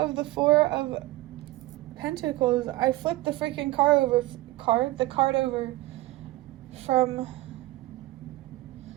the Four of Pentacles. I flipped the freaking card over from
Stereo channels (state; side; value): quieter; left; 18.8 dB